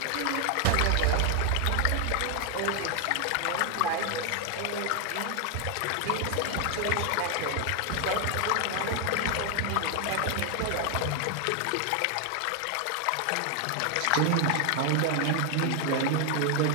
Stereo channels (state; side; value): different; both; correlation 0.00